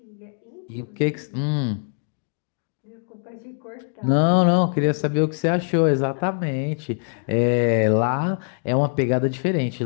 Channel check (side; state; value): right; silent; digital silence